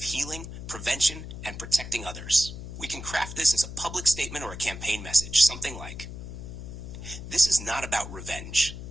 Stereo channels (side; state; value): left; noise; hum, 10 dB below the sound